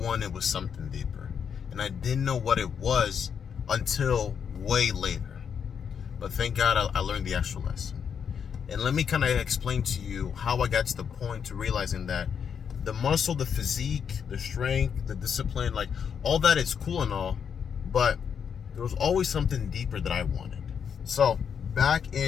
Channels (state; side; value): quieter; right; 7.3 dB